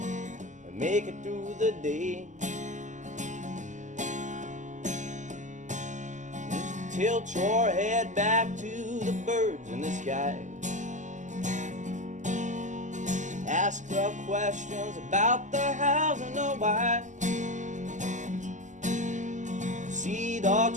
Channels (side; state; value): left; late; 0.36 ms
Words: and make it through the day. Just tilt your head back to the birds in the sky. Ask the questions about the hows and the why. See the